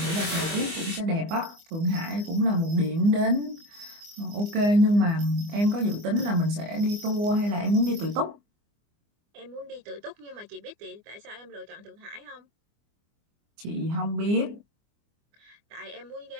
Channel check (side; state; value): left; late; 24 ms